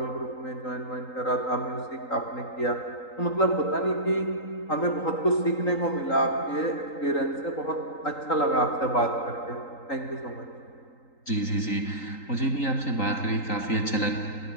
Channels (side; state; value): right; late; 3.8 ms